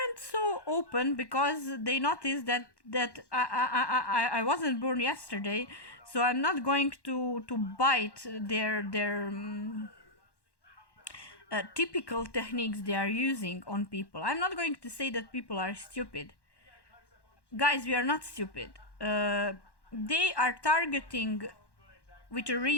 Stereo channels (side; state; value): right; late; 1.1 ms